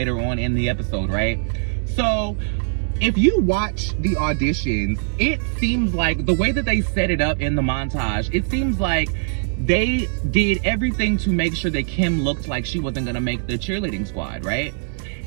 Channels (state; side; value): silent; left; digital silence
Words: on in the episode, right? So if you watch the auditions, it seems like the way that they set it up in the montage, it seems like they did everything to make sure that Kim looked like she wasn't gonna make the cheerleading squad, right?